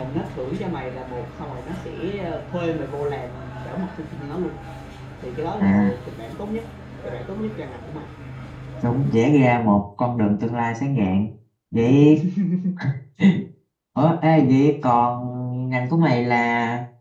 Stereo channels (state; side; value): identical; both; correlation 1.00